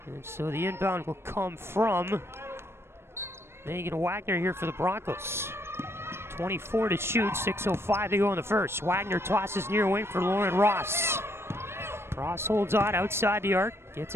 And so the inbound will come from Megan Wagner here for the Broncos. 24 to shoot, 6:05 to go in the first. Wagner tosses near wing for Lauren Ross. Ross holds on outside the arc, gets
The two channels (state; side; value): late; left; 0.12 ms